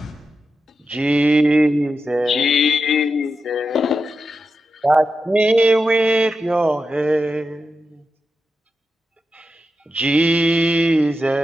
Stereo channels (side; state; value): both; normal; correlation 0.89